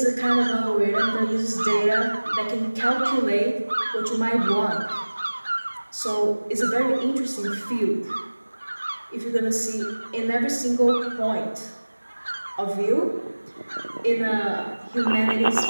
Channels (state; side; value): inverted; both; correlation -1.00